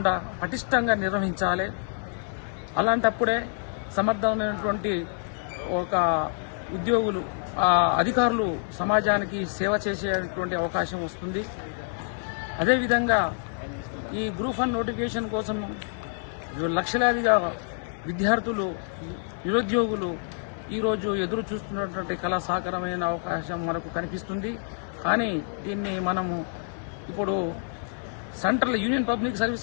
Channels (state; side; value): silent; right; 60 dB below the other